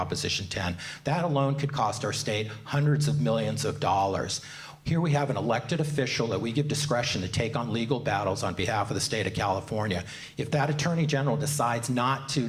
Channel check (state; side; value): identical; both; correlation 1.00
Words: 10. That alone could cost our state hundreds of millions of dollars. Here we have an elected official that we give discretion to take on legal battles on behalf of the state of California. If that attorney general decides not to